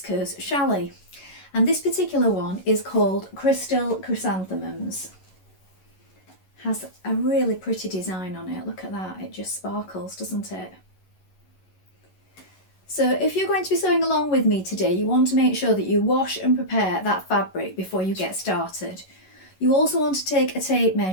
challis. And this particular one is called Crystal Chrysanthemums. Has a really pretty design on it. Look at that, it just sparkles, doesn't it? So if you're going to be sewing along with me today, you want to make sure that you wash and prepare that fabric before you get started. You also want to take a tape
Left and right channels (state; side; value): late; right; 11 ms